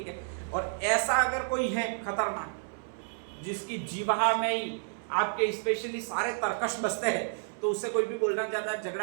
है। और ऐसा अगर कोई है खतरनाक, जिसकी जीवा में ही आपके स्पेशली सारे तरकश बसते हैं, तो उससे कोई भी बोलना ज्यादा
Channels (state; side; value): silent; left; 57 dB below the other